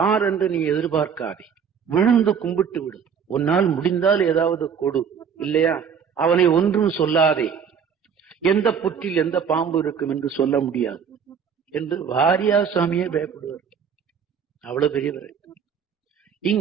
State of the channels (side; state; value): left; quieter; 7.1 dB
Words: என்று நீ எதிர்பார்க்காதே, விழுந்து கும்பிட்டு விடு. உன்னால் முடிந்தால் ஏதாவது கொடு, இல்லையா அவனை ஒன்றும் சொல்லாதே. எந்த புற்றில் எந்த பாம்பு இருக்கும் என்று சொல்ல முடியாது என்று வாரியார் சாமியே பயப்படுவார். அவ்வளவு பெரியவர்.